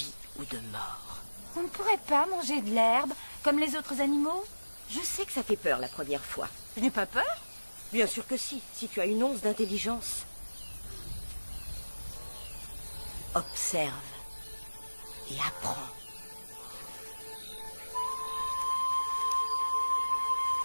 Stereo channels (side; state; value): both; inverted; correlation -1.00